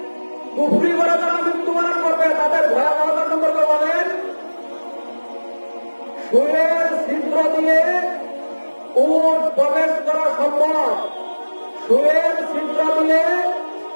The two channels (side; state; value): both; inverted; correlation -1.00